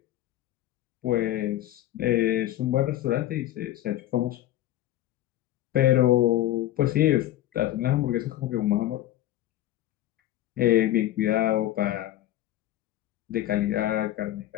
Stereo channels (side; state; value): right; quieter; 13.9 dB